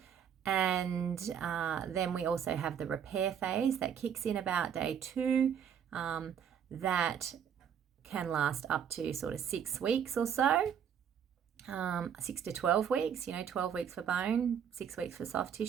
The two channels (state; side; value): quieter; left; 8.3 dB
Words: then we also have the repair phase that kicks in about day 2. That can last up to sort of 6 weeks or so. 6 to 12 weeks, 12 weeks for bone, 6 weeks for soft